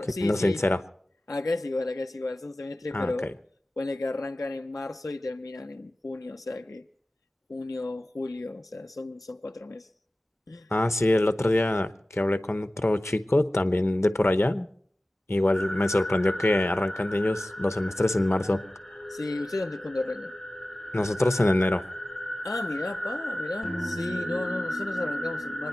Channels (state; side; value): normal; both; correlation 0.96